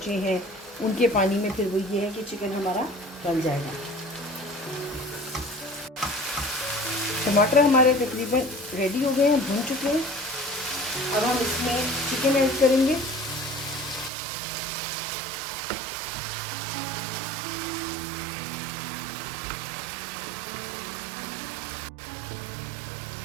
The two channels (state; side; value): drops out; left; at 14.1 s